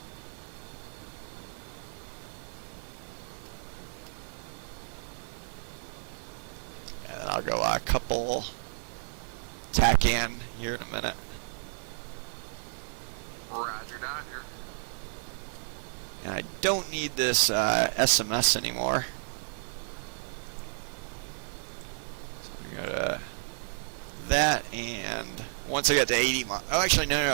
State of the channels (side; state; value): left; silent; digital silence